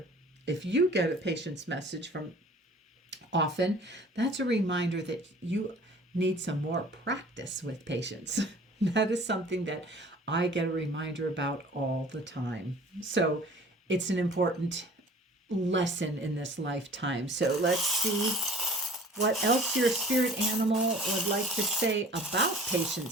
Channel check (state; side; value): normal; both; correlation 0.47